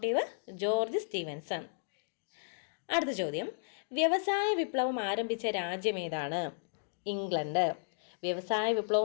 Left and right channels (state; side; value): silent; right; digital silence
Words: George Stephenson. അടുത്ത ചോദ്യം, വ്യവസായ വിപ്ലവം ആരംഭിച്ച രാജ്യം ഏതാണ്? ഇംഗ്ലണ്ട്. വ്യവസായ